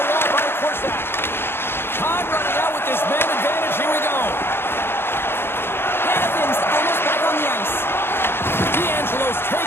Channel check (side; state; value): right; late; 0.11 ms